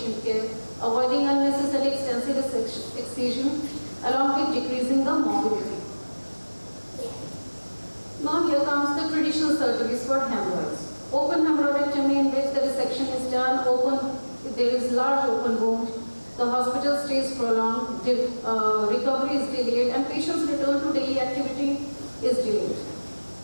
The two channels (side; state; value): both; inverted; correlation -1.00